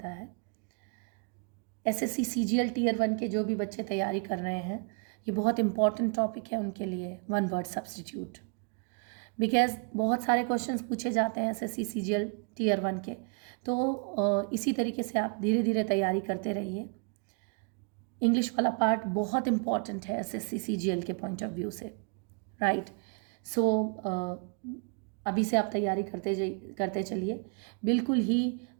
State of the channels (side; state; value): left; quieter; 37.0 dB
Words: है। SSC CGL Tier 1 के जो भी बच्चे तैयारी कर रहे हैं, ये बहुत इंपॉर्टेंट टॉपिक है उनके लिए, वन वर्ड सब्सटीट्यूट। बिकॉज बहुत सारे क्वेश्चंस पूछे जाते हैं SSC CGL Tier 1 के, तो इसी तरीके से आप धीरे धीरे तैयारी करते रहिए। इंग्लिश वाला पार्ट बहुत इंपॉर्टेंट है SSC CGL के पॉइंट ऑफ व्यू से, राइट। सो अभी से आप तैयारी करते चलिए, बिल्कुल ही